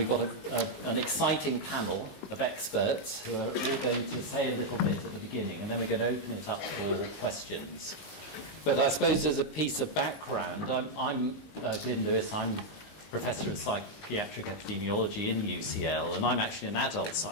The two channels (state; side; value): late; right; 19 ms